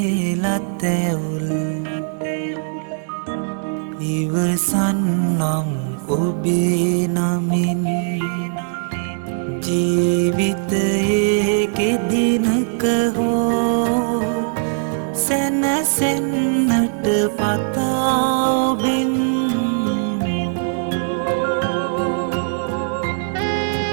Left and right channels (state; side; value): silent; left; digital silence